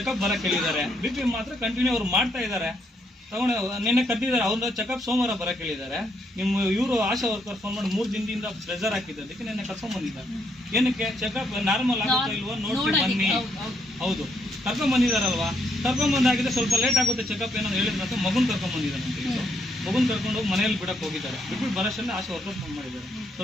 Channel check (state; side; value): normal; both; correlation 0.74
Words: ಬರಕ್ ಹೇಳಿದ್ದಾರೆ. BP ಮಾತ್ರ ಕಂಟಿನ್ಯೂ ಅವ್ರು ಮಾಡ್ತಾ ಇದಾರೆ. ತಗೊಂಡು ನಿನ್ನೆ ಕರೆದಿದ್ದಾರೆ, ಅವ್ರ ಚೆಕಪ್ ಸೋಮವಾರ ಬರಕ್ ಹೇಳಿದ್ದಾರೆ. ನಿಮ್ಮ ಇವರು ಆಶಾ ವರ್ಕರ್ ಫೋನ್ ಮಾಡಿ 3 ದಿನದಿಂದ ಪ್ರೆಷರ್ ಹಾಕಿದ್ದಕ್ಕೆ ನಿನ್ನೆ ಕರ್ಕೊಂಡ್ ಬಂದಿದ್ದಾರೆ. ಏನಕ್ಕೆ? ಚೆಕಪ್ ನಾರ್ಮಲ್ ಆಗುತ್ತಾ ಇಲ್ವೋ ನೋಡ್ಕೊಂಡು ಬನ್ನಿ. ಹೌದು, ಕರ್ಕೊಂಡ್ ಬಂದಿದಾರಲ್ವಾ? ಕರ್ಕೊಂಡ್ ಬಂದಾಗಿದೆ, ಸ್ವಲ್ಪ ಲೇಟ್ ಆಗುತ್ತೆ ಚೆಕಪ್ ಏನೋ ಹೇಳಿದ್ರೆ ಮಗುನ್ ಕರ್ಕೊಂಡ್ ಬಂದಿದ್ದಾರೆ. ಮಗುನ್ ಕರ್ಕೊಂಡು ಹೋಗಿ ಮನೆಯಲ್ಲಿ ಬಿಡಕ್ ಹೋಗಿದ್ದಾರೆ. ಬಿಟ್ಬಿಟ್ಟು ಬರೋಷ್ಟೇ ಆಶಾ ವರ್ಕರ್ ಫೋನ್ ಮಾಡಿದ್ದಾರೆ,